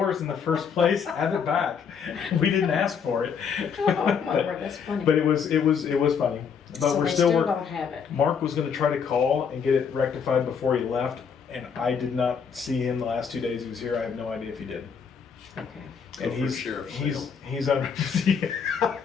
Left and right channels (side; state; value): right; quieter; 6.6 dB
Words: in the first place. Have it back. We didn't ask for it. Oh my word, that's funny. But it was funny. But So we're they still working. don't have it. Mark was going to try to call and get it rectified before he left, and I did not see him the last 2 days he was here. I have no idea if he did. Okay. And Go for sheriff's sale. he's on,